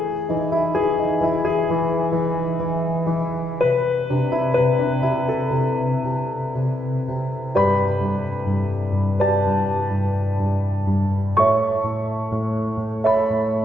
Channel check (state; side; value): normal; both; correlation 0.80